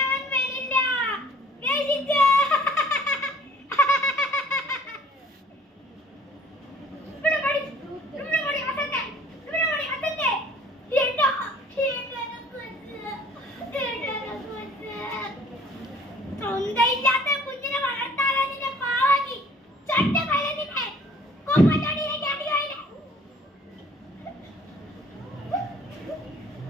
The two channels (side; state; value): both; normal; correlation 0.54